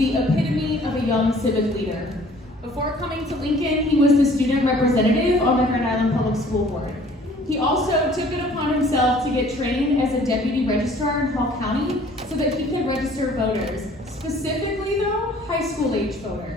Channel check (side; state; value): both; normal; correlation 0.54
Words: epitome of a young civic leader. Before coming to Lincoln, he was the student representative on the Grand Island Public School Board. He also took it upon himself to get trained as a deputy registrar in Hall County so that he could register voters. Specifically though, high school age